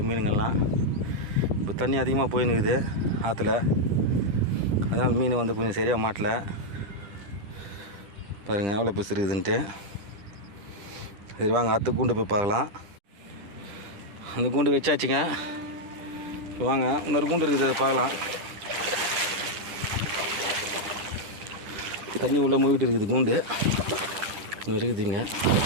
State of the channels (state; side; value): late; left; 10 ms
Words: மீனுங்கள்லாம். இப்போ தண்ணி அதிகமாக போயின்னுக்குது ஆற்றுல, அதனால் மீன் வந்து கொஞ்சம் சரியாக மாட்டலை. பாருங்கள் எவ்வளோ பெருசு இருக்குதுன்ட்டு. சரி வாங்க அடுத்த கூண்டு போய் பார்க்கலாம். அந்த கூண்டு வச்சாச்சுங்க. இப்போ வாங்க இன்னொரு கூண்டு இருக்குது, அதை பார்க்கலாம். தண்ணி உள்ளே மூவிட்டு இருக்குது கூண்டு, இன்னும் இருக்குதுங்க.